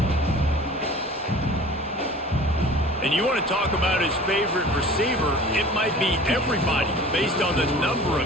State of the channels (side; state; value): both; normal; correlation 0.43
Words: And you want to talk about his favorite receiver, it might be everybody based on the number